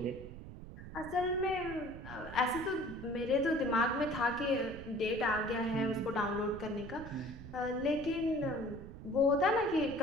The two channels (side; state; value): right; noise; rumble, 12 dB below the sound